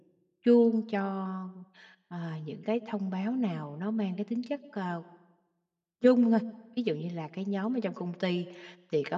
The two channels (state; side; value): identical; both; correlation 1.00